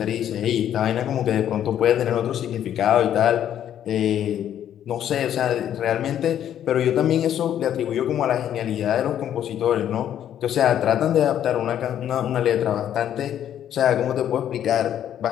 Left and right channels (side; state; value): right; quieter; 10.5 dB